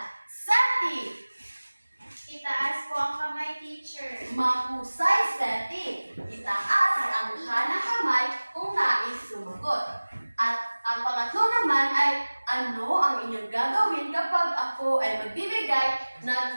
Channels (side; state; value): both; inverted; correlation -1.00